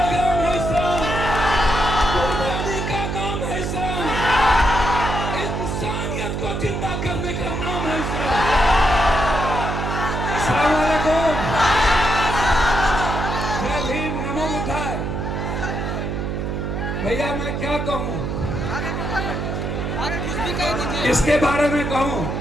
है इस्लाम, कुर्बानी का नाम है इस्लाम, इंसानियत को जिंदा करने का नाम है इस्लाम। अस्सलाम वालेकुम, जय भीम, नमो बुद्धाय। भैया मैं क्या कहूँ, इसके बारे में कहूँ,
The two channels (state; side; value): noise; right; hum, 2 dB below the sound